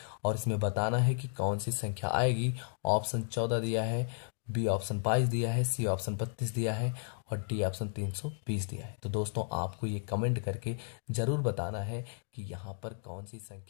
और इसमें बताना है कि कौन सी संख्या आएगी। ऑप्शन 14 दिया है, बी ऑप्शन 22 दिया है, सी ऑप्शन 32 दिया है, और डी ऑप्शन 320 दिया है। तो दोस्तों आपको ये कमेंट करके जरूर बताना है कि यहाँ पर कौन सी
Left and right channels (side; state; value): right; silent; digital silence